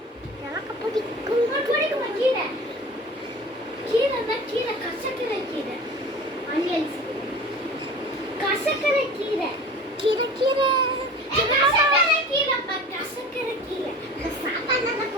எனக்கு பிடிக்கும். கீரை கீரை கசக்கரை கீரை. கசக்கரை கீரை கீரை கீரை. சாப்பாடு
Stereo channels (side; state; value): both; normal; correlation 0.39